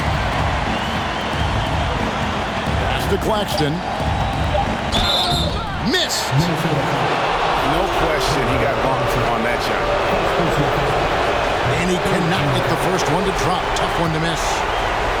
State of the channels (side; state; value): both; identical; correlation 1.00